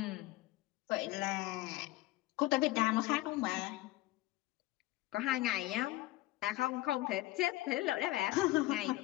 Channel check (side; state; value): right; quieter; 18.3 dB